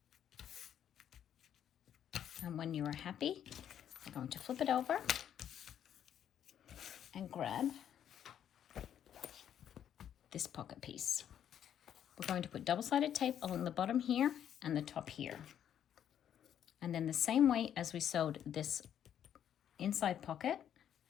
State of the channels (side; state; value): right; quieter; 9.7 dB